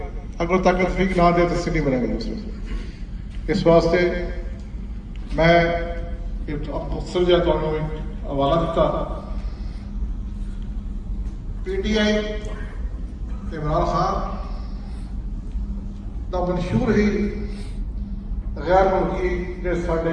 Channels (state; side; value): identical; both; correlation 1.00